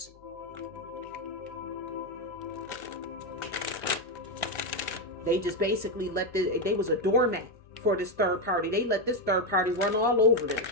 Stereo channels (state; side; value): noise; left; hum, 26 dB below the sound